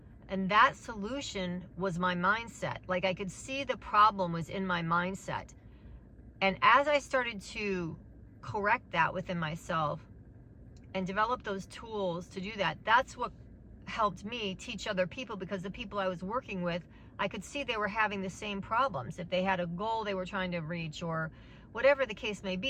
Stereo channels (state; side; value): identical; both; correlation 1.00